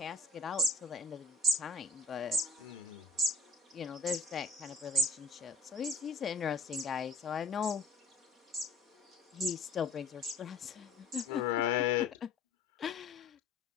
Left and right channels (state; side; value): quieter; right; 3.0 dB